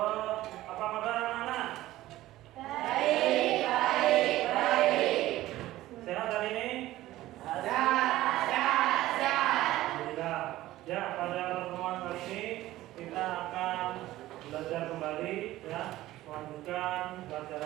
kabar anak-anak? Baik. Sehat hari ini? Sehat. Alhamdulillah. Ya, pada pertemuan kali ini kita akan belajar kembali, ya, melanjutkan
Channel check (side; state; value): left; quieter; 15.8 dB